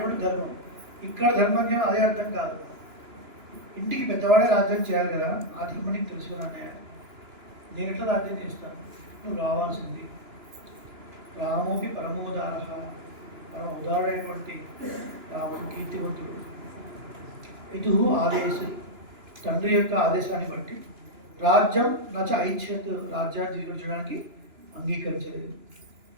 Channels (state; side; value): late; left; 2.9 ms